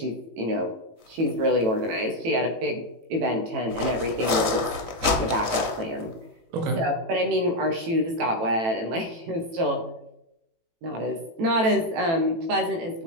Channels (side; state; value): left; late; 18 ms